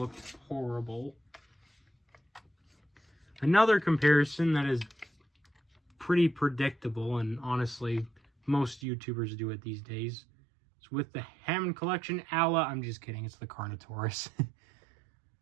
horrible. Another comparison that is pretty predictable, and honestly, most YouTubers do it these days. It's with the Hammond Collection Ala. I'm just kidding. It's the Carnotaurus.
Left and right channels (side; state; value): left; drops out; at 8.8 s